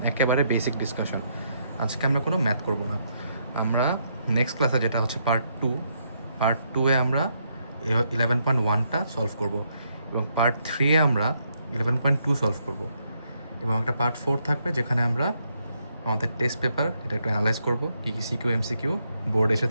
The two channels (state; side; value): inverted; both; correlation -0.76